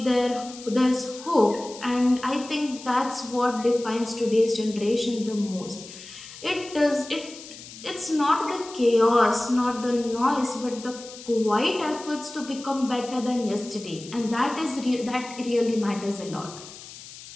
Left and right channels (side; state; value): left; noise; hiss, 16 dB below the sound